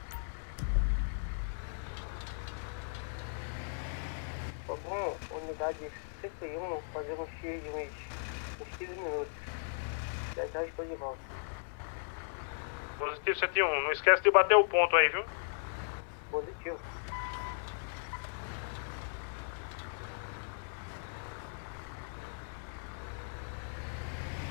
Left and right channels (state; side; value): silent; right; digital silence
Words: Bom, unidade 101, fazer um X de uns 15 minutos. Já estou de volta. Positivo 71. Não esquece de bater o ponto aí, viu? Positivo.